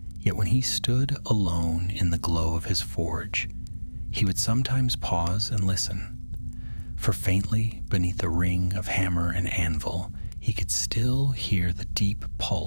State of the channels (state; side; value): inverted; both; correlation -1.00